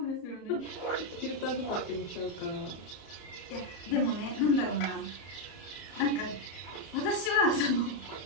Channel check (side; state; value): right; late; 34 ms